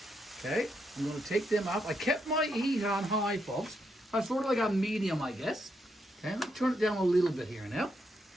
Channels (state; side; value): normal; both; correlation 0.79